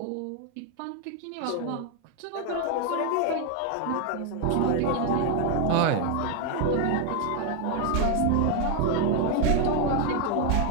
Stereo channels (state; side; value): different; both; correlation 0.00